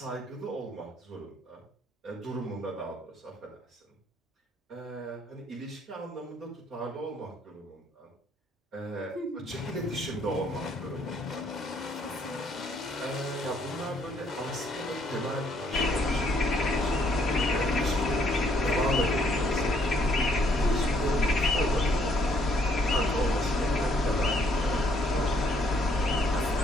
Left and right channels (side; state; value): both; normal; correlation 0.67